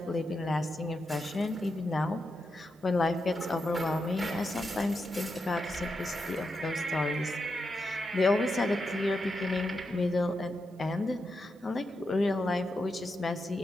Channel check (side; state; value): both; normal; correlation 0.86